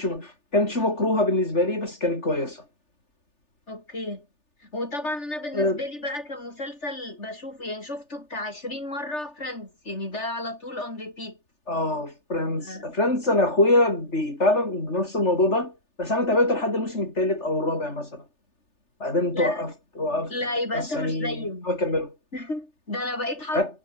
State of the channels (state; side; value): late; right; 3.4 ms